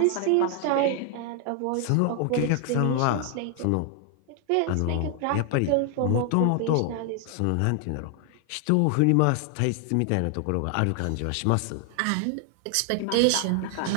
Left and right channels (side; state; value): both; different; correlation 0.00